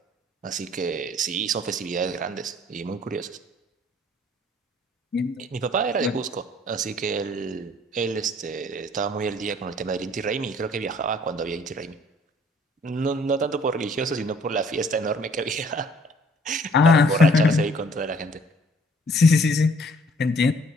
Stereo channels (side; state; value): both; normal; correlation 0.58